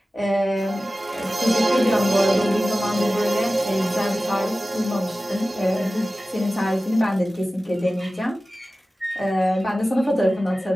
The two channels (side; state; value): both; normal; correlation 0.96